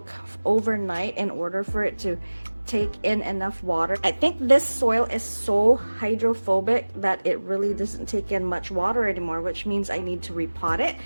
overnight in order for it to take in enough water. I think this soil is so hydrophobic that it really doesn't take in much water anymore, which means I need to repot it.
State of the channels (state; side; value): inverted; both; correlation -1.00